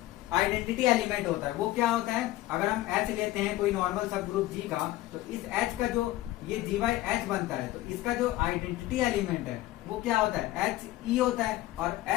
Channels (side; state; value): right; quieter; 16.6 dB